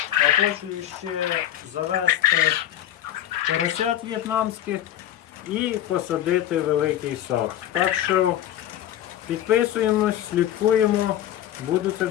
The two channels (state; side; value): quieter; right; 11.9 dB